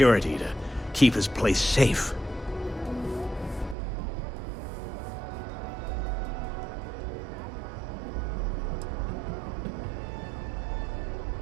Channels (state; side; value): drops out; left; at 3.8 s